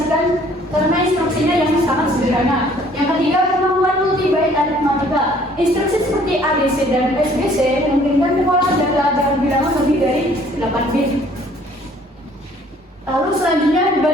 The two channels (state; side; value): normal; both; correlation 0.58